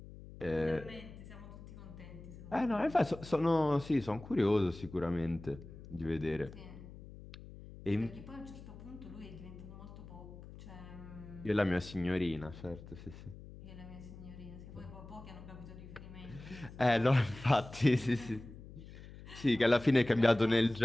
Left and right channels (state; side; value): noise; left; hum, 16 dB below the sound